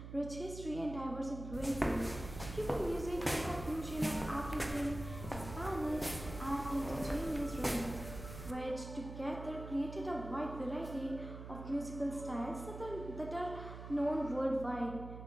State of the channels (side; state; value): right; noise; hum, 10 dB below the sound